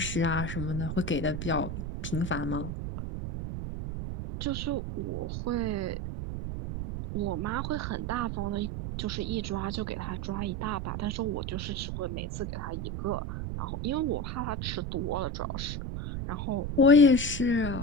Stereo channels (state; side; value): noise; right; rumble, 4 dB below the sound